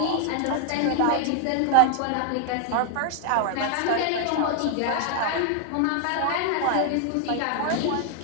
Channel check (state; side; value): different; both; correlation 0.00